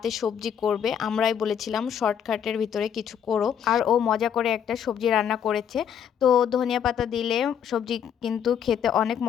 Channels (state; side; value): quieter; right; 8.5 dB